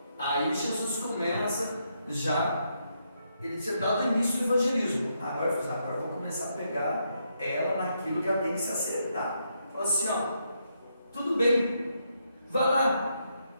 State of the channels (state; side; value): inverted; both; correlation -0.79